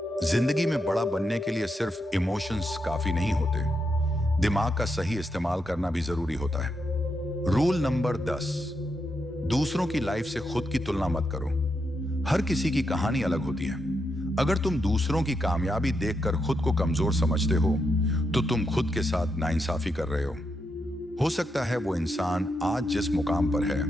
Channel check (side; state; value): both; normal; correlation 0.83